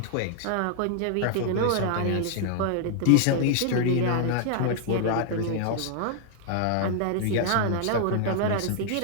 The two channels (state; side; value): different; both; correlation 0.00